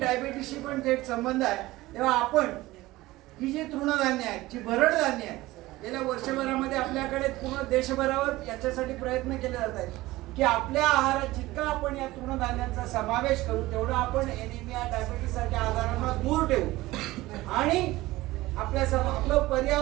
पण थेट संबंध आहे. तेव्हा आपण ही जी तृणधान्य आहेत, जी भरड धान्य आहेत, गेल्या वर्षभरामध्ये आपल्याकडे पूर्ण देशभरावर याच्यासाठी प्रयत्न केले जात आहेत की आपल्या आहारात जितका आपण या तृणधान्यांचा समावेश करू तेवढं आपण एनिमिया, डायबिटीस सारख्या आजारांना दूर ठेवू आणि आपलं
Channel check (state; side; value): quieter; left; 18.4 dB